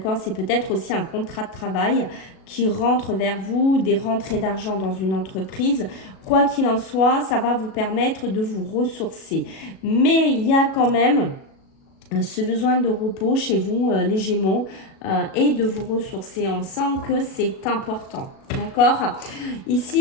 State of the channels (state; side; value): late; right; 37 ms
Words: c'est peut-être aussi un contrat de travail qui rentre vers vous, des rentrées d'argent dans une entreprise. Quoi qu'il en soit, ça va vous permettre de vous ressourcer. Mais il y a quand même ce besoin de repos chez vous, les Gémeaux, et de vous ressourcer. On sent que c'est important. D'accord.